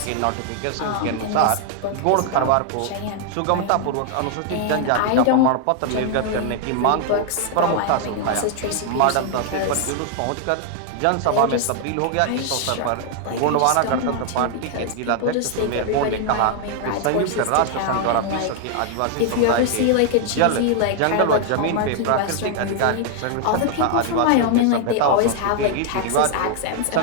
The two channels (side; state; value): both; different; correlation 0.00